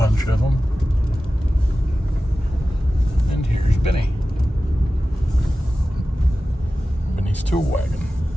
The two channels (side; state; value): both; normal; correlation 0.95